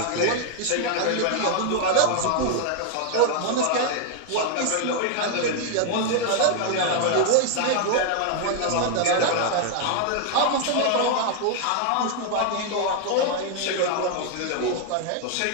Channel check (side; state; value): both; different; correlation 0.00